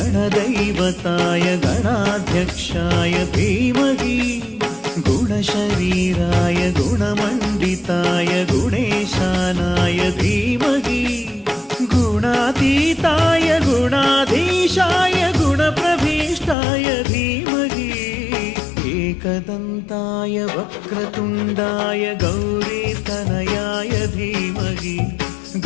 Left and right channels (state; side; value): drops out; right; at 16.6 s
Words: गणाध्यक्षाय धीमहि गुणशरीराय गुणमण्डिताय गुणेशानाय धीमहि गुणातीताय गुणाधीशाय गुणप्रभीष्टाय धीमहि एकदन्ताय वक्रतुण्डाय गौरीतनयाय धीमहि